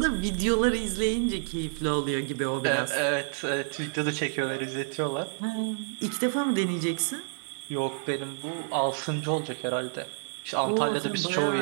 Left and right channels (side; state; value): left; silent; digital silence